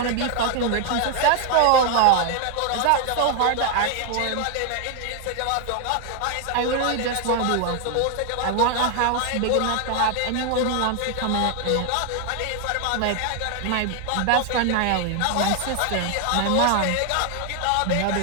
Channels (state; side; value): different; both; correlation 0.00